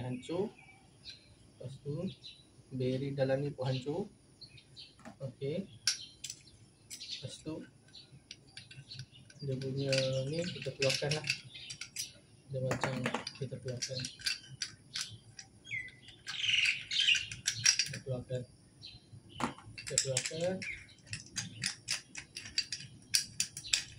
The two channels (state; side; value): identical; both; correlation 1.00